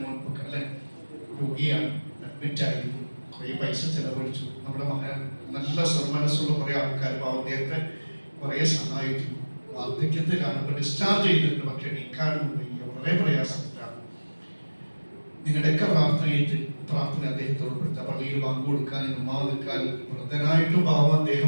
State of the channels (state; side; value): inverted; both; correlation -1.00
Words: മുൻപൊക്കെ അല്ലെ രോഗിയാണ്, അഡ്മിറ്റ് ആയിരുന്നു, കുറേ പൈസ ചെലവഴിച്ചു. നമ്മുടെ മകൻ നല്ല മനസ്സുള്ള കുറേ ആൾക്കാർ അദ്ദേഹത്തെ കുറേ സഹായിച്ചു. വാർദ്ധക്യത്തിലാണ്, ഇപ്പൊ ഡിസ്ചാർജ് ചെയ്തിട്ടുണ്ട്, പക്ഷെ നീക്കാനും വയ്യ, വളരെ പ്രയാസത്തിലാണ്. നിങ്ങളുടെയൊക്കെ പ്രാർത്ഥന അദ്ദേഹത്തെ ഉൾപ്പെടുത്തുക. പള്ളിയിൽ പങ്കു കൊടുക്കാൻ, ഉമ്മാവ് നിൽക്കാൻ വൃദ്ധനായിട്ടും പാവം